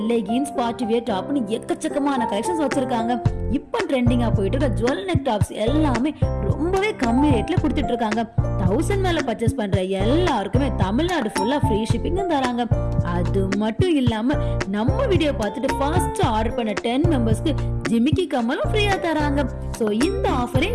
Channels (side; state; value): both; identical; correlation 1.00